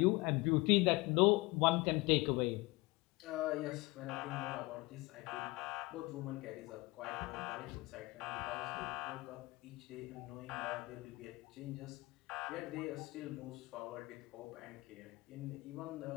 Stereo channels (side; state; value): right; quieter; 22.9 dB